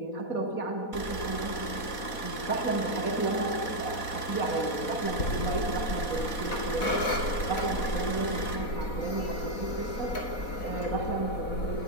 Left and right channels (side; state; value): right; late; 4.1 ms